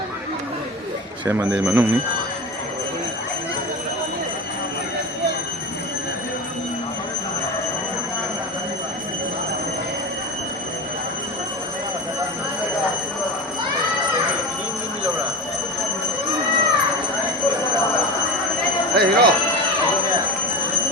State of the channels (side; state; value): both; normal; correlation 0.28